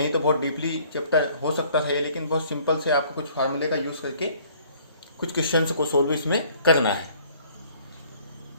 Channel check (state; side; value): inverted; both; correlation -0.58